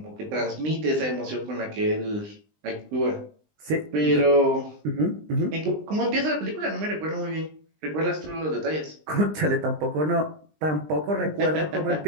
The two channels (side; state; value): left; late; 20 ms